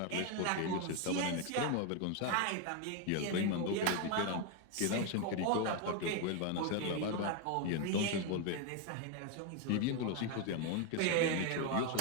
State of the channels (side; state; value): both; different; correlation 0.01